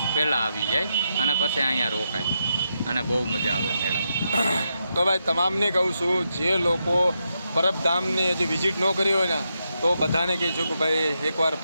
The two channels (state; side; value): inverted; both; correlation -0.84